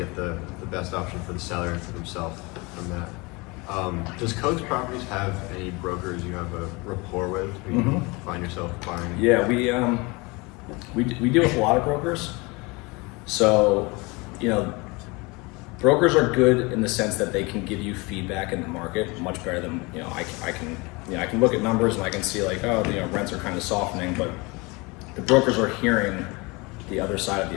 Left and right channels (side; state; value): right; quieter; 26.1 dB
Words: the best option for the seller and for themselves from that. Does Kokes Properties have any brokers you have a rapport with who you find yourself buying? Yeah, we deal with a lot of brokers. So, brokers are good in the sense that they can give you feedback in the market much better than I can look at numbers and I can see like, rents are kind of softening, but the brokers are hearing the other side of the